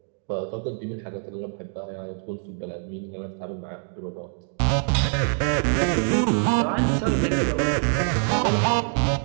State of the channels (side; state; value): left; silent; 61 dB below the other